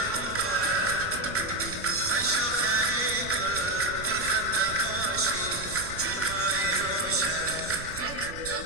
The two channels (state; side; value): noise; right; rumble, 13 dB below the sound